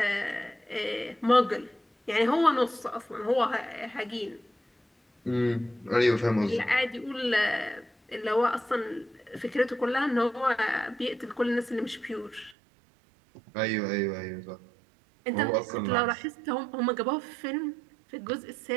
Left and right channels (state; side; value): drops out; left; at 12.6 s